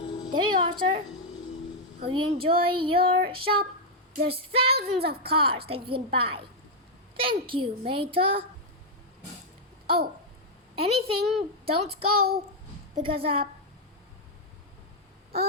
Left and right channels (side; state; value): both; normal; correlation -0.02